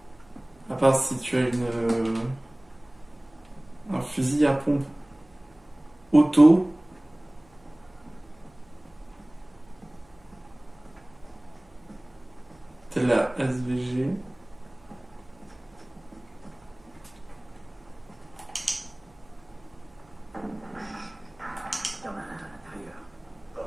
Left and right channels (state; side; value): noise; right; hum, 29 dB below the sound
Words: À part si tu as un fusil à pompe auto. Telle la SVG. Il y en a un à l'intérieur.